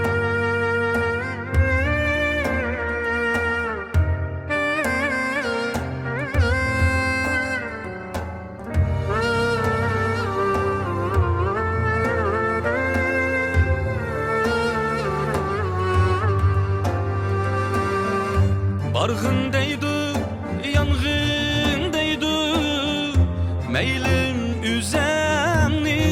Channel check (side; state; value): both; identical; correlation 1.00